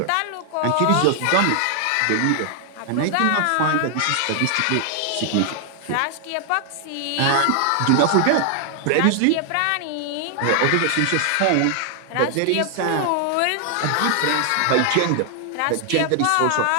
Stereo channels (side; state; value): both; different; correlation 0.00